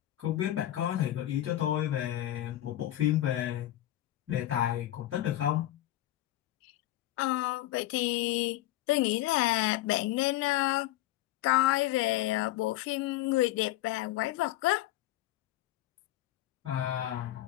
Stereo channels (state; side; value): quieter; right; 14.8 dB